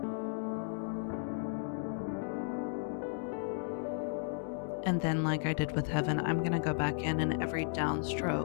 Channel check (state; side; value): silent; right; digital silence